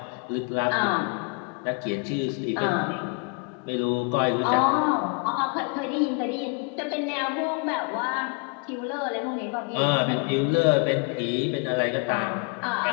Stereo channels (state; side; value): quieter; right; 34.5 dB